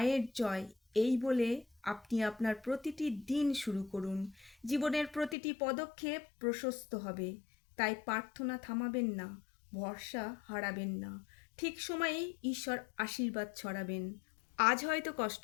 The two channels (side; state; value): right; drops out; at 5.4 s